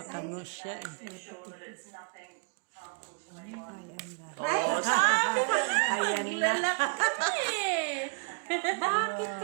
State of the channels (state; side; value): quieter; left; 35.4 dB